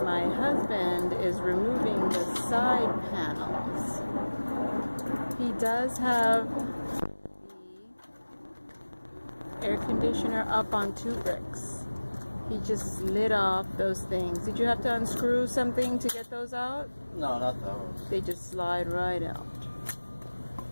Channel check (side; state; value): both; inverted; correlation -1.00